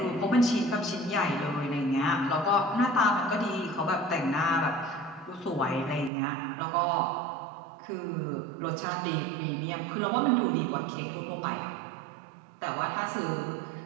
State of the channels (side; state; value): left; drops out; at 6.1 s